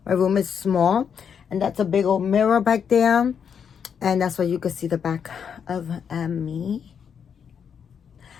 My room is small, and that's a big old mirror back there, and that's why you can see the back of me.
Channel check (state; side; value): quieter; right; 7.3 dB